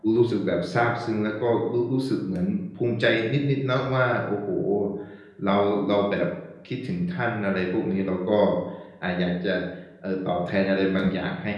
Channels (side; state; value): both; identical; correlation 1.00